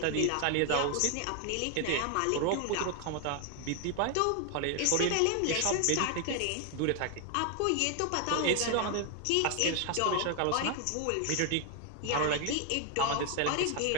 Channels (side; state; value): both; different; correlation 0.00